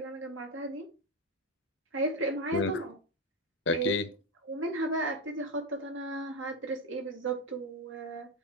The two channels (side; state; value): both; normal; correlation 0.10